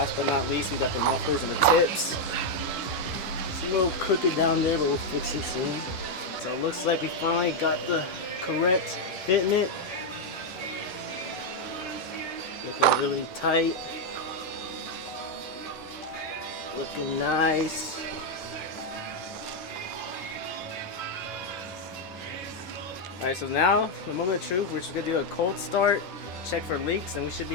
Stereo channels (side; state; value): right; late; 11 ms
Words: but not least, we got the mufflers and the tips. It's a little crooked down there, but we'll fix it soon. So it looks like we finally got the correct fit in it. Looking really tight. Looking nice. Alright, so now the moment of truth, we're just gonna do a cold start, check for leaks, and we should